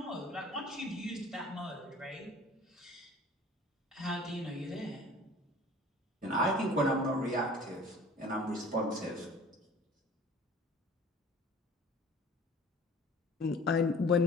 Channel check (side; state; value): both; normal; correlation 0.47